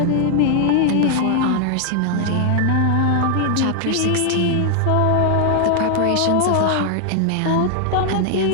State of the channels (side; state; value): both; different; correlation 0.00